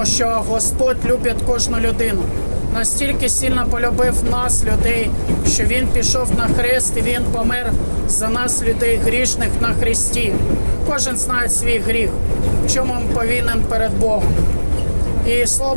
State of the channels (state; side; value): inverted; both; correlation -1.00